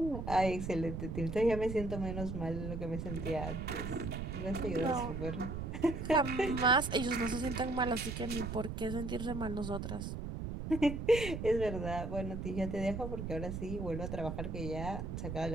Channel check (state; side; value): noise; right; rumble, 5 dB below the sound